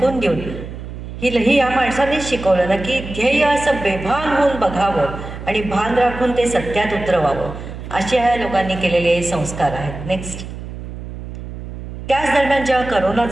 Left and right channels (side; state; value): right; noise; hum, 10 dB below the sound